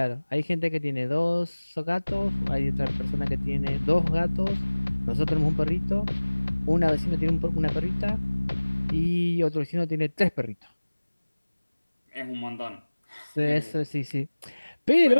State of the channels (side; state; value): both; inverted; correlation -1.00